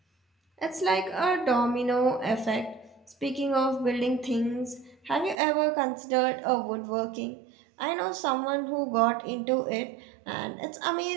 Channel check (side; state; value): left; drops out; at 5.4 s